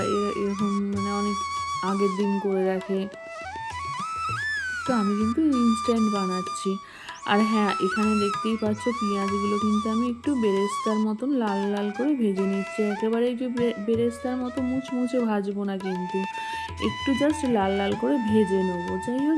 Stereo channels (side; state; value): both; identical; correlation 1.00